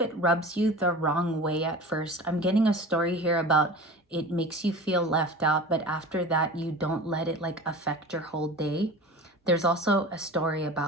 it rubs you the wrong way at first. I'm getting a story here about it makes you feel left out, but after that, you don't let it like affect your whole day. There's also a story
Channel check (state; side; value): normal; both; correlation 0.36